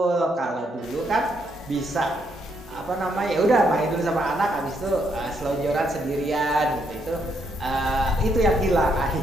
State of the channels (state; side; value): normal; both; correlation 0.75